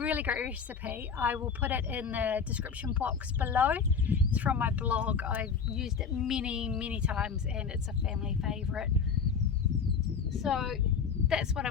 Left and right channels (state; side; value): quieter; right; 6.1 dB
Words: great recipe. I will put it in the description box below. It's from my blog. I've used it many times and it's a family favourite. So that's what